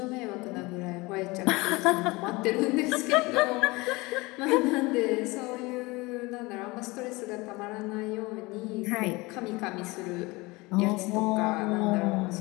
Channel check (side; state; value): right; quieter; 23.4 dB